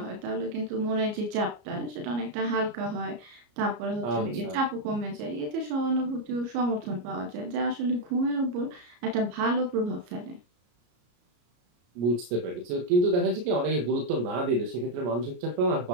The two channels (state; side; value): late; left; 34 ms